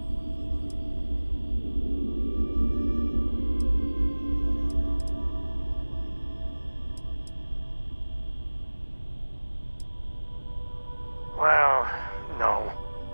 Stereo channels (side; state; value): both; inverted; correlation -1.00